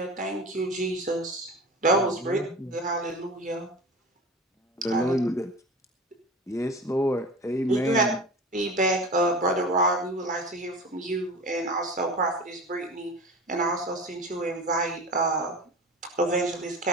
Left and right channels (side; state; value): both; normal; correlation 0.33